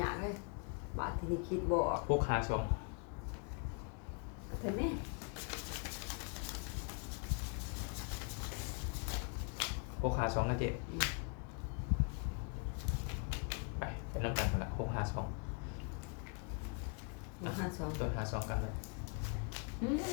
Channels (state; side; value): quieter; right; 36.2 dB